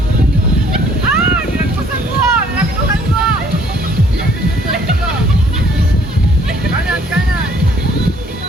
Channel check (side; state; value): both; normal; correlation 0.60